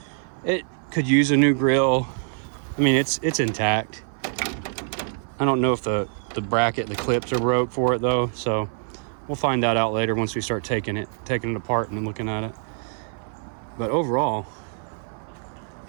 It could use a new grille. I mean, it's intact. I don't know if the bracket, the clips are broke for it though, so we'll find that out later once we start taking it apart and looking at it. But overall,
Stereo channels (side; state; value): left; silent; 57 dB below the other